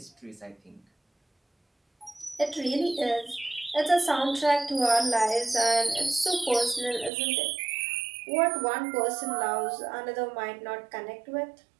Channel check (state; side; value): drops out; left; at 7.1 s